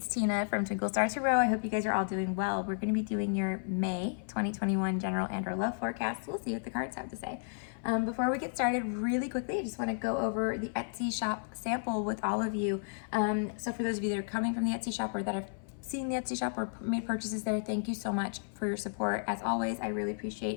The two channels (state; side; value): silent; right; 56 dB below the other